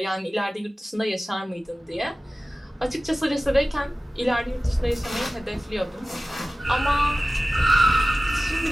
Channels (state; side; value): normal; both; correlation 0.96